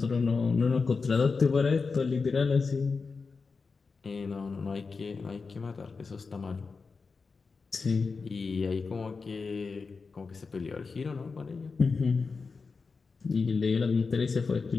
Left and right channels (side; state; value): right; quieter; 4.6 dB